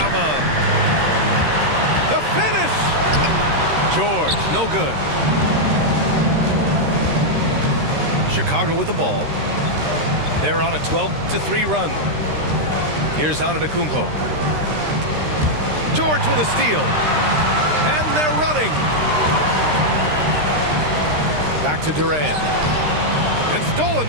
The finish. George, no good. Chicago with the ball. They're on a 12-3 run. Here's Antetokounmpo. George with a steal. And they're running. Back to Durant. And stolen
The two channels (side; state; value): left; late; 13 ms